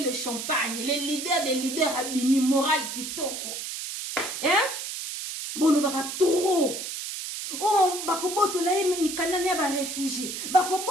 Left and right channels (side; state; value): right; noise; hiss, 6 dB below the sound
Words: le champagne. Les leaders des leaders, Abini, Moral, Kitoko. Hein? Bon, nous va trop. Oh, bakoboto la ye, mi kanane ba réfugié.